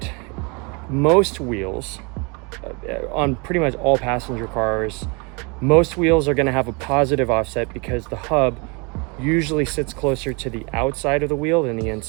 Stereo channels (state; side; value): quieter; left; 30.9 dB